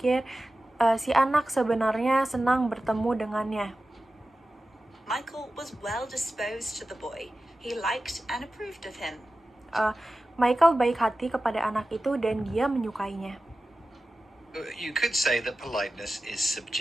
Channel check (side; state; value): both; normal; correlation 0.94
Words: si anak sebenarnya senang bertemu dengannya. Michael was well disposed to the boy. He liked and approved of him. Michael baik hati kepada anak itu dan dia menyukainya. You could say that politeness is